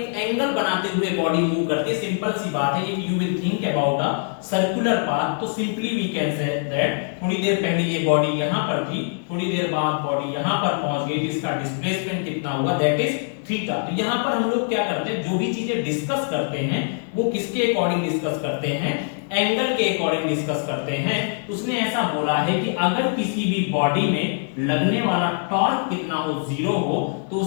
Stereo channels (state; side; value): silent; right; 59 dB below the other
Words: एंगल बनाते हुए बॉडी मूव करती है। सिंपल सी बात है, if you will think about a circular path, तो simply we can say that थोड़ी देर पहले ये बॉडी यहां पर थी, थोड़ी देर बाद बॉडी यहां पर पहुंच गई, जिसका डिस्प्लेसमेंट कितना हुआ, दैट इज थीटा। तो यहां पर हम लोग क्या करते हैं, जो भी चीजें डिस्कस करते हैं वो किसके अकॉर्डिंग डिस्कस करते हैं, एंगल के अकॉर्डिंग डिस्कस करते हैं। उसने ऐसा बोला है कि अगर किसी भी बॉडी में लगने वाला टॉर्क कितना हो, 0 हो, तो